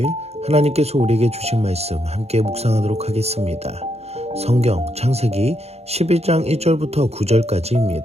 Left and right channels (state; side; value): late; left; 0.31 ms